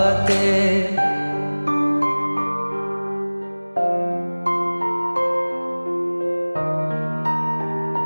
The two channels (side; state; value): both; inverted; correlation -1.00